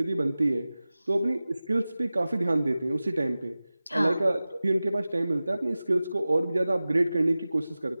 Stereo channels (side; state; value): both; inverted; correlation -0.96